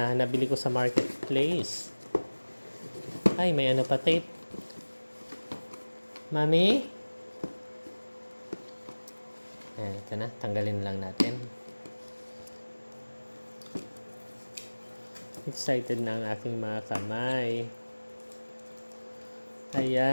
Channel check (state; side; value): inverted; both; correlation -1.00